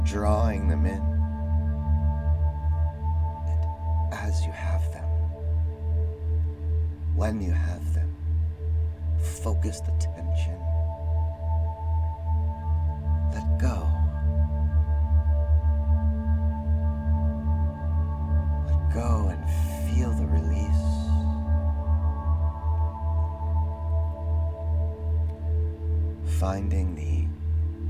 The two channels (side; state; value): both; identical; correlation 1.00